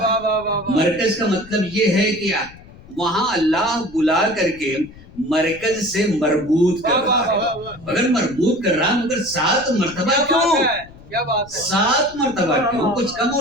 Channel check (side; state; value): left; noise; rumble, 21 dB below the sound